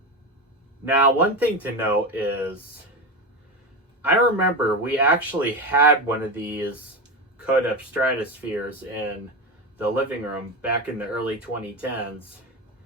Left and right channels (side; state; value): both; normal; correlation 0.19